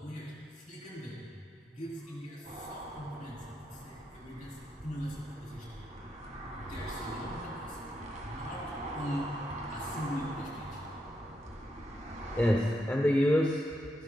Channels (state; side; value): normal; both; correlation 0.82